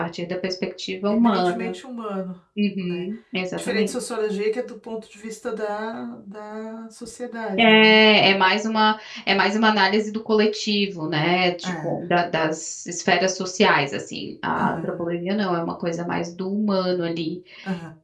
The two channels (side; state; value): both; identical; correlation 1.00